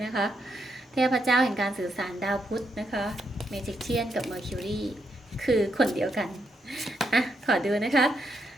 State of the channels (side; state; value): both; normal; correlation 0.80